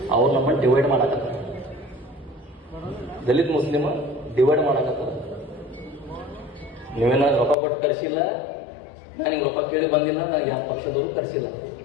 ಅವ್ರು ನಮ್ಮನ್ನು ಡಿವೈಡ್ ಮಾಡಕತ್ತಾರ. ದಲಿತ ಮುಸ್ಲಿಮ ಡಿವೈಡ್ ಮಾಡಕತ್ತಾರ. ನೀವೇನ ರೊಕ್ಕ ಕೊಟ್ಟು ಕರ್ಸಿಲ್ಲ, ನಾನು ಹಿಂಗೆ ರೊಕ್ಕ ಕೇಳಿ ಬಂದಿಲ್ಲ, ನನಗೆ ಯಾವ ಪಕ್ಷದವರು ಕರ್ಸಿಲ್ಲ.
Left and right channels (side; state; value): right; drops out; at 7.6 s